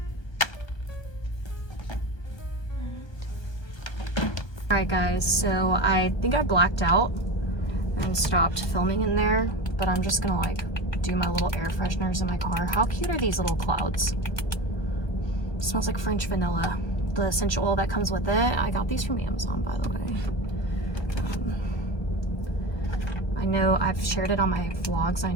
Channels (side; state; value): right; late; 1.4 ms